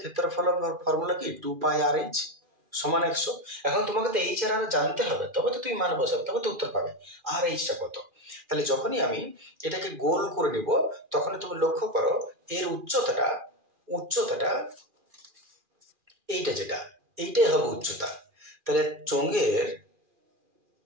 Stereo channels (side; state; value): left; late; 2.4 ms